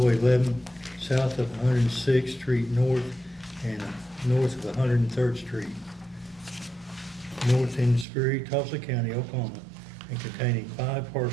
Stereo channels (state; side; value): drops out; left; at 8.1 s